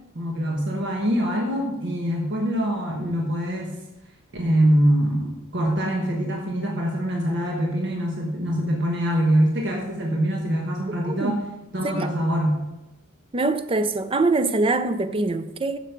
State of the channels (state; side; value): normal; both; correlation 0.75